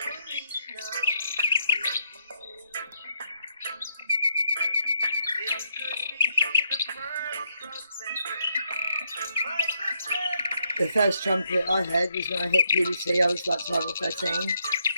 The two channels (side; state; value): both; inverted; correlation -0.76